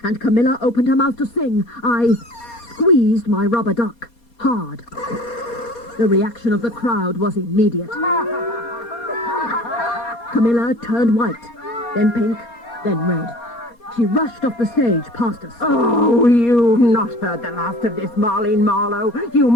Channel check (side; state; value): right; late; 4.2 ms